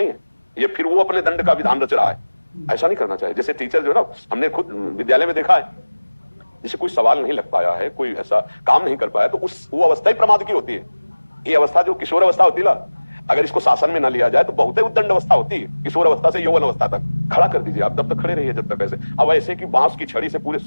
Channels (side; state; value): both; inverted; correlation -1.00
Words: है। ये फिर वो अपने दंड का विधान रच रहा है। ऐसा नहीं करना चाहिए। जैसे टीचर जो है ना, हमने खुद विद्यालय में देखा है, जैसे कोई सवाल नहीं लग पाया है, कोई ऐसा काम नहीं कर पाया, तो वो अवस्था ही प्रमाद की होती है। ये अवस्था जो किशोर अवस्था होती है ना, अगर इसको शासन में न लिया जाए तो बहुत ही उद्दंड अवस्था होती है। किशोर अवस्था से यौवन अवस्था तक खड़ा कर दीजिए आप, तब तक खड़े रहिए जब तक ऐसे। अब ऐसे कि बांस की छड़ी से पूरे